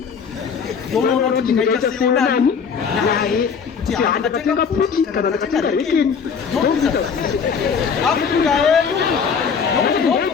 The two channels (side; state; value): right; quieter; 6.3 dB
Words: ndonoona kuti ndingaita seonani naye kuti handatenga puti kana ndatenga rekeni ndokuita Afrika yedu nokuti